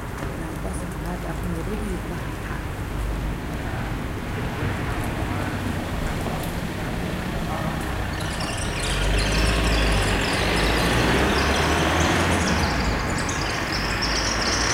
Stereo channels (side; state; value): both; identical; correlation 1.00